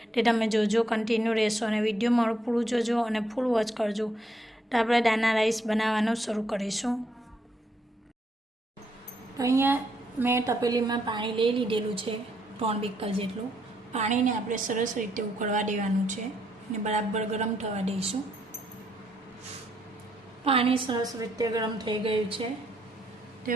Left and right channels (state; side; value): normal; both; correlation 0.74